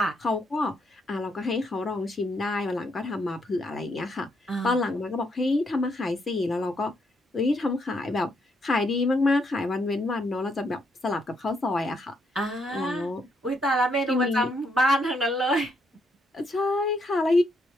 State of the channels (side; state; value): both; normal; correlation 0.75